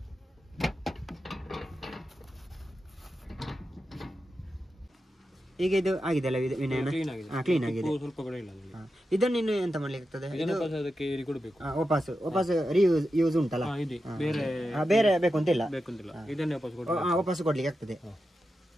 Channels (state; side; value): normal; both; correlation 0.90